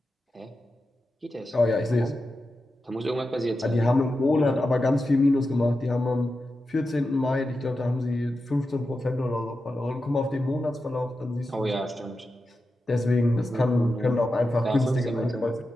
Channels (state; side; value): normal; both; correlation 0.90